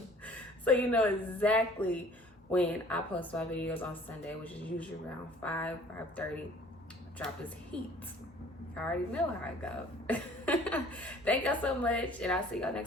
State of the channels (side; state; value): both; normal; correlation 0.52